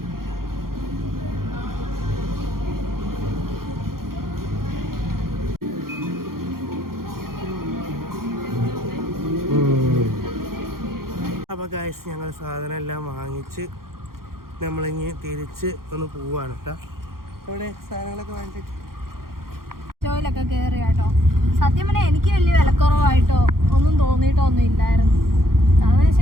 അപ്പോൾ ഗൈസ് ഞങ്ങൾ സാധനം എല്ലാം വാങ്ങിച്ച് നമ്മളിങ്ങ് തിരിച്ച് ഒന്ന് പോവാണ് കേട്ടോ. ഇവിടെ സാധനങ്ങളൊക്കെ വാങ്ങിച്ചിട്ട് സ്റ്റോയിലൊക്കെ കയറി കേട്ടോ. സത്യം പറഞ്ഞാൽ എനിക്ക് വലിയ വിലക്കുറവായിട്ടോ ഒന്നും തോന്നിയിട്ടോ ഒന്നും ഇല്ലായിരുന്നു. കാരണം വെച്ച്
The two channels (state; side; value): late; left; 0.92 ms